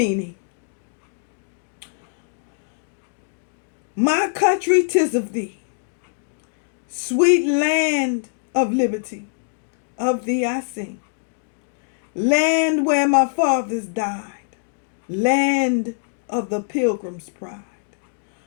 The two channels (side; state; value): right; silent; digital silence